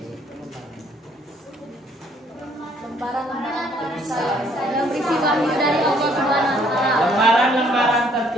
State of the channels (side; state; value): both; normal; correlation 0.63